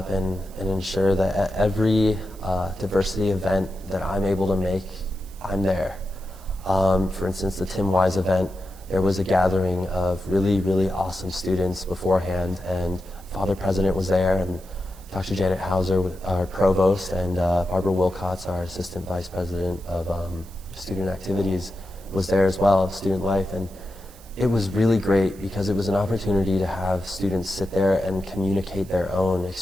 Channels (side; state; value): right; noise; hiss, 24 dB below the sound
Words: and ensure that at every diversity event that I'm able to make, I'm there. For instance, the Tim Wise event, there was a gathering of really, really awesome students beforehand, and Father President was there, and Dr. Janet Hauser, our provost, and Barbara Wilcox, our assistant vice president of student activities, was there as well, student life. And it was really great because it was an opportunity to have students sit there and communicate their own